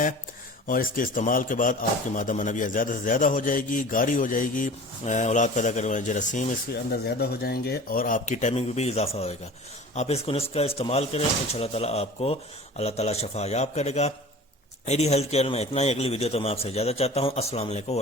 اور اس کے استعمال کے بعد آپ کی مادہ منویہ زیادہ سے زیادہ ہو جائے گی، گاری ہو جائے گی، اولاد پیدا کرنے والے جراثیم اس کے اندر زیادہ ہو جائیں گے اور آپ کی ٹائمنگ میں بھی اضافہ ہوئے گا۔ آپ اس کو نسخہ استعمال کریں، انشاءاللہ تعالیٰ آپ کو اللہ تعالیٰ شفا یاب کرے گا۔ ایڈی ہیلتھ کیئر میں اتنا ہی، اگلی ویڈیو تو میں آپ سے اجازت چاہتا ہوں۔ السلام علیکم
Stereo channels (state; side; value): normal; both; correlation 0.40